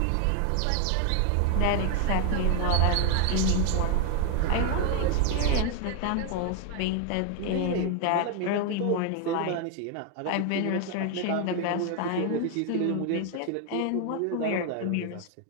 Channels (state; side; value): different; both; correlation 0.01